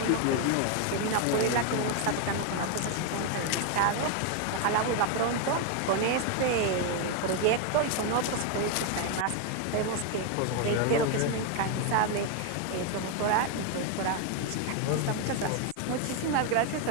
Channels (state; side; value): different; both; correlation 0.01